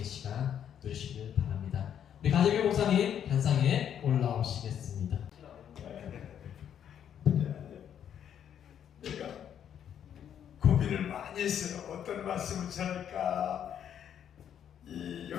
시간 누리시길 바랍니다. 우리 가재규 목사님 단상에 올라오시겠습니다. 내가 고민을 많이 했어요. 어떤 말씀을 전할까.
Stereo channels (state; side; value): quieter; right; 9.2 dB